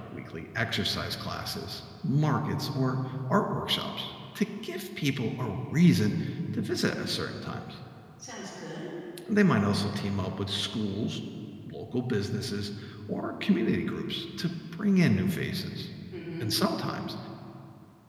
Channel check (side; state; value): both; identical; correlation 1.00